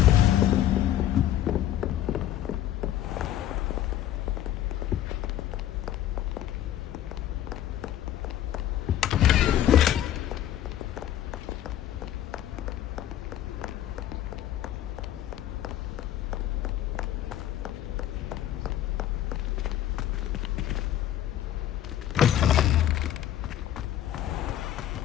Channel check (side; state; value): right; quieter; 11.9 dB